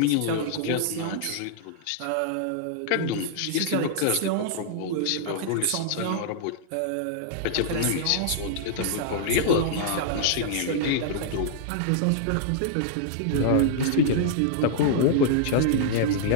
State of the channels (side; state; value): both; different; correlation -0.01